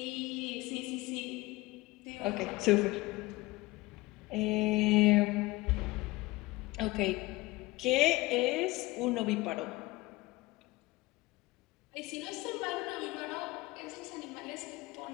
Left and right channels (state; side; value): quieter; right; 21.0 dB